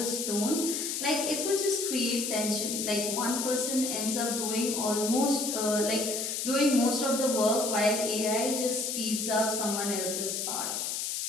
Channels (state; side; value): noise; left; hiss, 2 dB below the sound